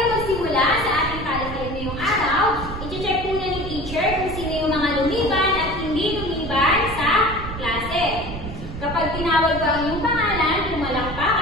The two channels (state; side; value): noise; right; rumble, 9 dB below the sound